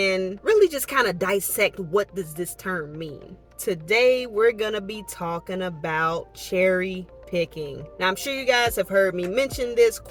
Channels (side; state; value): both; identical; correlation 1.00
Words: really just kind of dissect what does this term mean. Today we're gonna be talking about cherry picking. Now, I'm sure you guys have heard me mention this